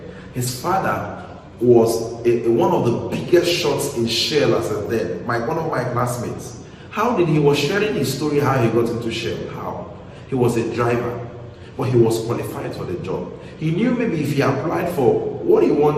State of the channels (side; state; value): both; identical; correlation 1.00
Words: his father was one of the biggest shots in Shell as a then, one of my classmates. How did he was sharing his story how he got into Shell? How? He was a driver, but he was qualified for the job. He knew maybe if he applied for what he